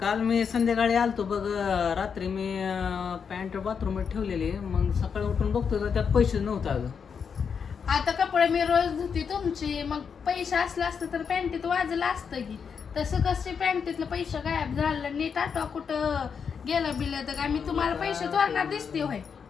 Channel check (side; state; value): right; quieter; 6.5 dB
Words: मी संध्याकाळी आलतो बघ. रात्री मी पॅन्ट बाथरूममध्ये ठेवलेली. मग सकाळी उठून बघतो तर त्यात पैसे नव्हतं अगं. आता कपडे मी रोज धुती तुमची, मग पैसे असलं असतं तर पॅन्टीत वाजलं असतं की. तसं कसे पॅन्टीतलं पैसे गायब झालं? नीट आठवा कुठं गेलं बिलं तर काय मी तुम्हाला पैसे चोरणार दिसते होय?